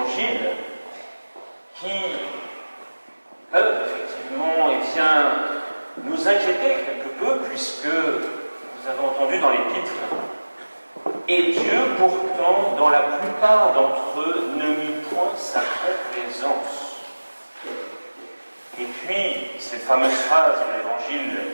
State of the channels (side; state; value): both; inverted; correlation -1.00